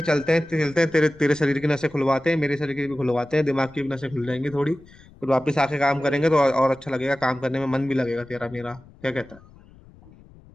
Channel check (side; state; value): left; noise; rumble, 24 dB below the sound